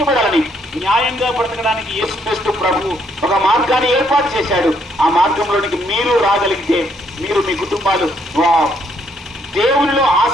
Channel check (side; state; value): both; normal; correlation 0.70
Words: న్యాయంగా బ్రతకడానికి యేసుక్రీస్తు ప్రభు ఒక మార్గాన్ని ఏర్పాటు చేశాడు. ఆ మార్గంలోనికి మీరు రాగలిగితే మీరు, మీ కుటుంబాలు దేవునిలో